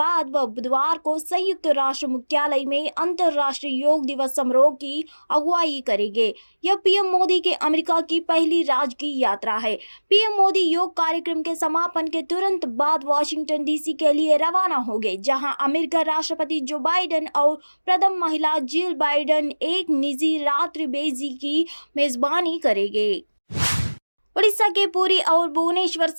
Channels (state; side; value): inverted; both; correlation -1.00